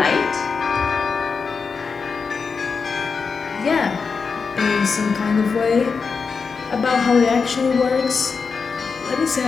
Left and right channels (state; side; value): quieter; right; 5.2 dB